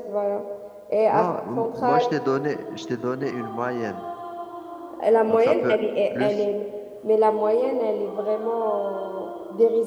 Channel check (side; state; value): both; identical; correlation 1.00